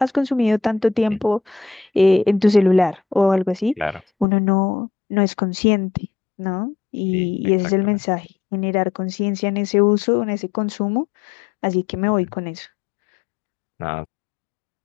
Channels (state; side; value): drops out; right; at 4.2 s